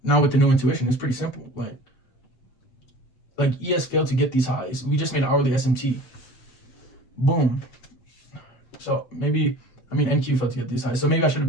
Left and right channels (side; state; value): right; late; 8.0 ms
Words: now with the new intuition, it's pretty simple. Like ES failed to get these highs. We just made hourly SMT. Boom. So maybe NQ failed to get these highs. So maybe I should have